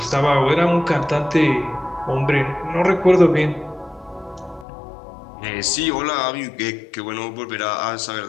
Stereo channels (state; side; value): drops out; right; at 4.7 s